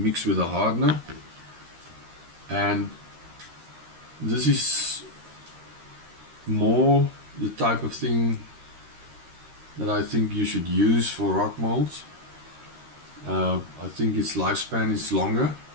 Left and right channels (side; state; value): left; late; 13 ms